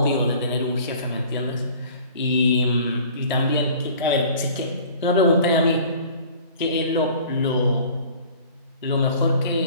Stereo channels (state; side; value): inverted; both; correlation -0.47